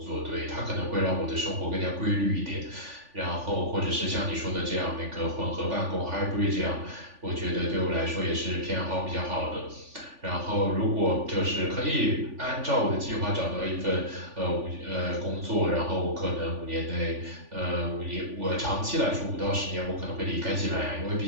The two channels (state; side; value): late; left; 3.4 ms